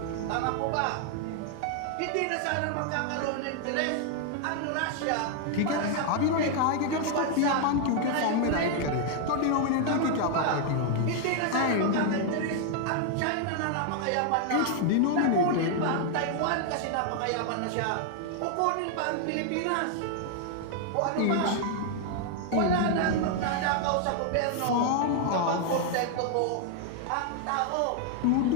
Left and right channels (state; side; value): different; both; correlation 0.00